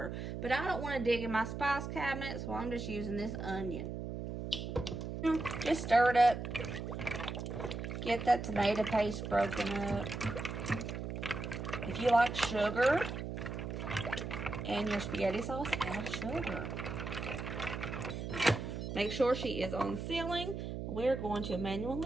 But I don't want to dig in my spice cabinet, so I'm just using this onion. Just stir it up. Get that tomato paste broken up. If you like sugar in your spaghetti sauce, add sugar. Make sure she is on sealing. We're going to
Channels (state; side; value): noise; right; hum, 5 dB below the sound